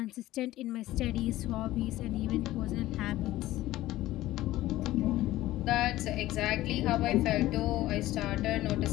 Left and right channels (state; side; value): quieter; right; 16.0 dB